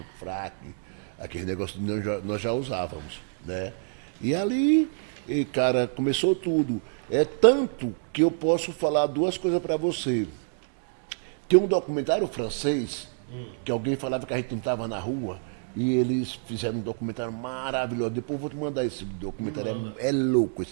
fraque, aquele negócio nós já usávamos, né? E ali, cara, começou tudo. É tanto que eu posso falar duas coisas para você. Tem um documentário francês, que alguém falava que a gente não estava na rua, e eles fizeram um documentário maravilhoso. Depois eu vou te mandar esse documentário. Me manda. É louco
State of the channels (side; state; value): left; silent; digital silence